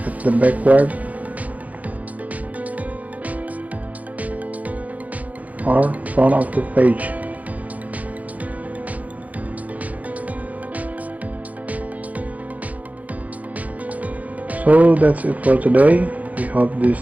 at the backward or front of the page. So that's it for today. We hope these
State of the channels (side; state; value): left; late; 0.074 ms